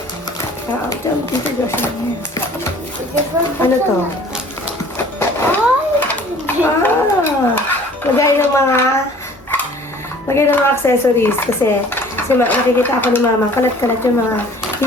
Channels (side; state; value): both; normal; correlation 0.50